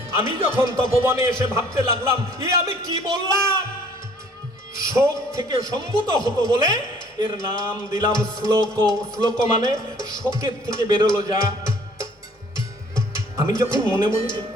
আমি যখন তপবনে এসে ভাবতে লাগলাম, আমি কি বললাম? শোক থেকে সম্ভূত হতো বলে এর নাম দিলাম শ্লোক। শ্লোক মানে শোকের থেকে বেরোলো যা। আমি যখন মনে মনে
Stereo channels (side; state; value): both; normal; correlation 0.57